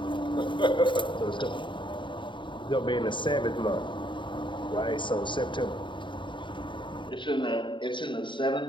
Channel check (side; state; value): right; late; 0.23 ms